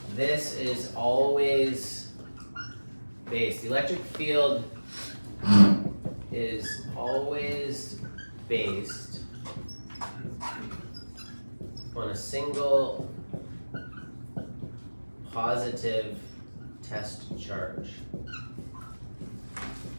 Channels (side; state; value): both; inverted; correlation -1.00